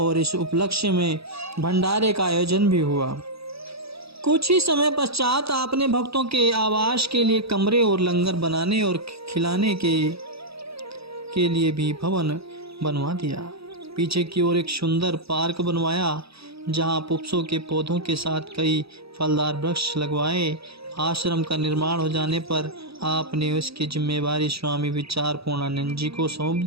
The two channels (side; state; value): left; late; 0.77 ms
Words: इस उपलक्ष्य में भंडारे का आयोजन भी हुआ। कुछ ही समय पश्चात आपने भक्तों के आवास के लिए कमरे और लंगर बनाने और खिलाने के लिए भी भवन बनवा दिया। पीछे की ओर एक सुंदर पार्क बनवाया जहां पुष्पों के पौधों के साथ कई फलदार वृक्ष लगवाए। आश्रम का निर्माण हो जाने पर आपने उसकी जिम्मेवारी स्वामी विचार पूर्णानंद जी को सौंप